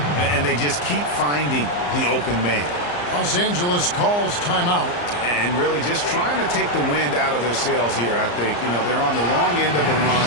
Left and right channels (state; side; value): late; right; 34 ms